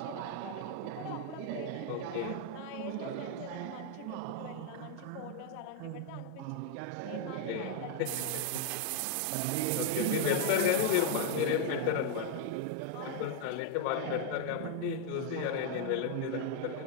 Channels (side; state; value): both; different; correlation 0.00